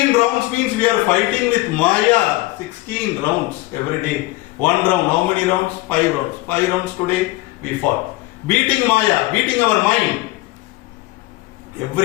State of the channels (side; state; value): right; quieter; 19.8 dB